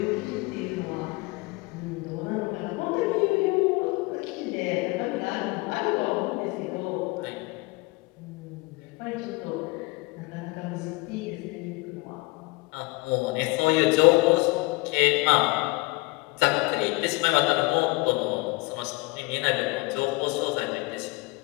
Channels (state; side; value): quieter; right; 24.8 dB